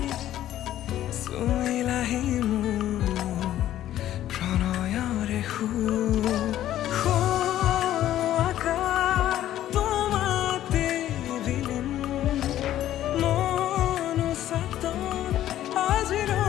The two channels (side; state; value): right; quieter; 12.6 dB